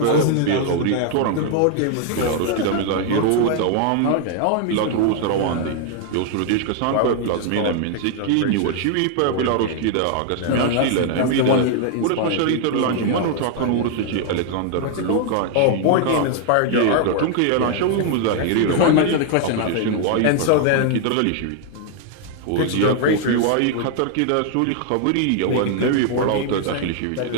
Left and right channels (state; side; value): different; both; correlation 0.00